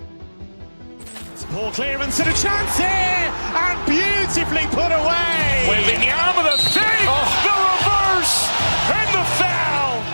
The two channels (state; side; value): inverted; both; correlation -1.00